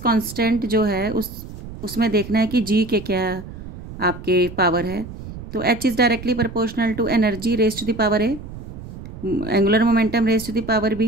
जो है उसमें देखना है कि जी के क्या आपके पावर है। तो h is directly proportional to energy raise to the power a, angular momentum raise to the power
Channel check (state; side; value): noise; right; rumble, 12 dB below the sound